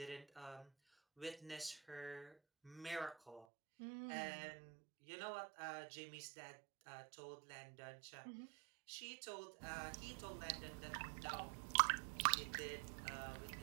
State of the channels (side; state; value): left; drops out; at 3.5 s